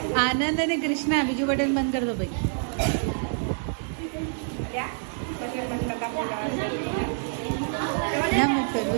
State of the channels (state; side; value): silent; left; digital silence